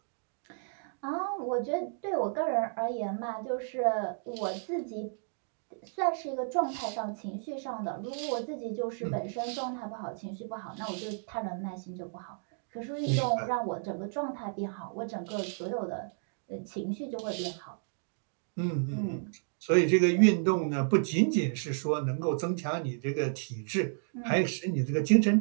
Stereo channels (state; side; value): silent; left; digital silence